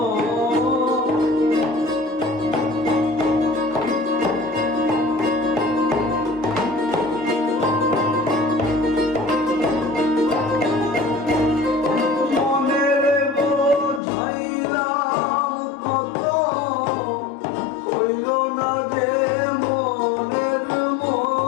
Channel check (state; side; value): drops out; right; at 14.0 s